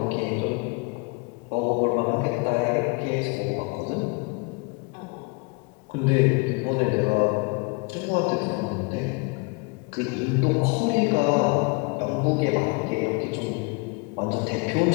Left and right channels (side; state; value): right; quieter; 29.8 dB